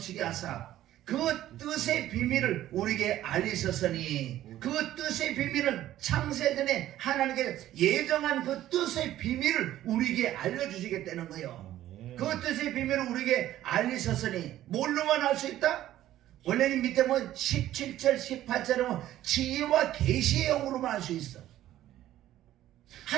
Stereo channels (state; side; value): quieter; left; 13.4 dB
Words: 하사 그 뜻의 비밀을 우리에게 알리셨으니 그 뜻의 비밀은 창세전에 하나님께 예정한 그 뜻의 비밀을 우리에게 알려주시겠다는 거예요. 그 뜻의 비밀을 우리에게 알리셨으니 뭘로만 알 수 있다? 원래는 밑에 뭐 17절 18절은 지혜와 계시의 영으로만 알 수 있어.